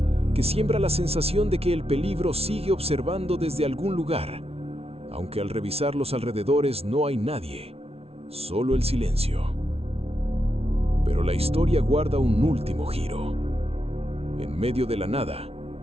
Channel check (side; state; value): left; late; 0.30 ms